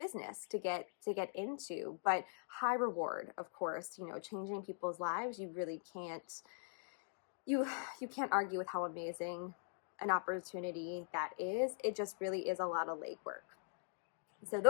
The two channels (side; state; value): right; silent; digital silence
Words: to get into, but high reward, of course. Changing people's lives, you really can't you can't argue with how amazing an opportunity that is. It just really is a lot of legwork. So